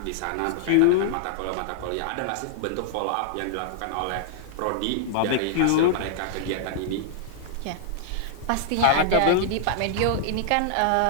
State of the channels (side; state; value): both; different; correlation -0.01